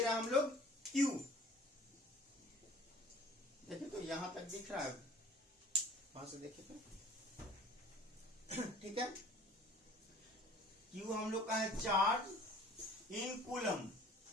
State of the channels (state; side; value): normal; both; correlation 0.48